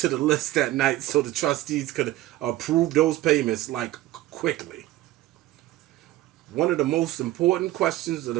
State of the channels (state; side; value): quieter; left; 15.7 dB